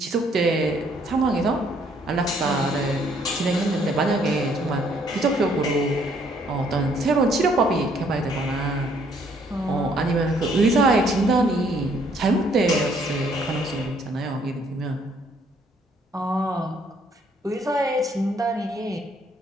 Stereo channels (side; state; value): both; normal; correlation 0.65